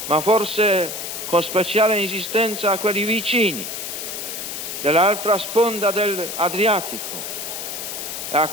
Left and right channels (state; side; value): noise; left; hiss, 6 dB below the sound